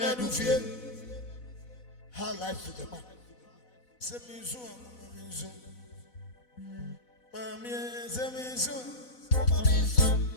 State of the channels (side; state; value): right; late; 4.0 ms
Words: of fear. How life to the man. Semizu, Mamizu. Mamie, Semizu, Mamizu.